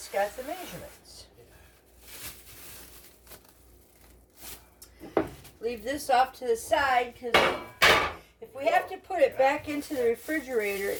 got the measurements. Leave this off to the side because if we have to put it back into the refrigerator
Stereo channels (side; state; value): both; identical; correlation 1.00